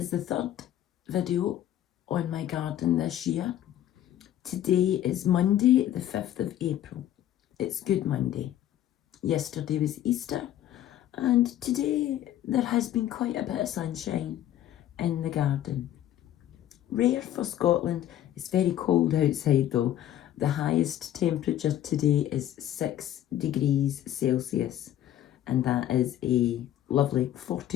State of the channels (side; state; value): right; quieter; 12.0 dB